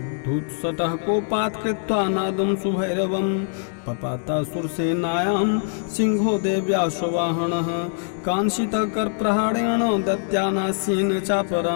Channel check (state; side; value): silent; right; digital silence